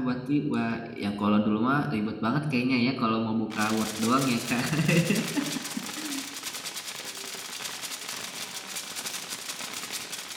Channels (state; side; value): identical; both; correlation 1.00